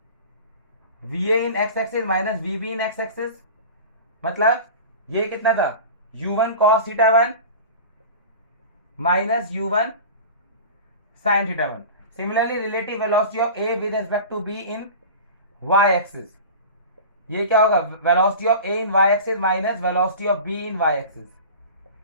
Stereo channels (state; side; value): inverted; both; correlation -0.35